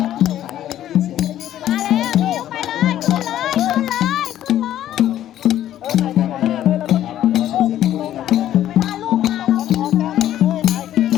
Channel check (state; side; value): quieter; right; 12.1 dB